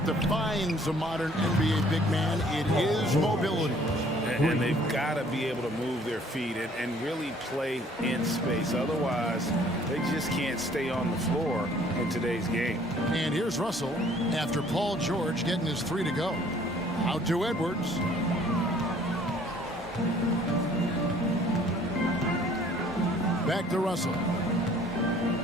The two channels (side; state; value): both; normal; correlation 0.57